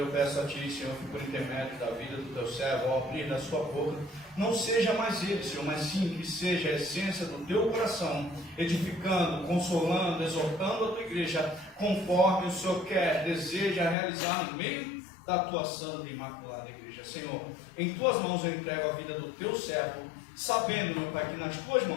peço a Ti, Senhor, que por intermédio da vida do Teu servo, ao abrir da sua boca, não seja mais ele, Senhor, mas sim que seja a essência do Teu coração, edificando, consolando, exortando a Tua igreja, conforme o Senhor quer, deseja realizar no meio da Tua santa e imaculada igreja. Senhor, em Tuas mãos eu entrego a vida do Teu servo, sabendo, meu Pai, que nas Tuas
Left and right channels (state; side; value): drops out; right; at 14.0 s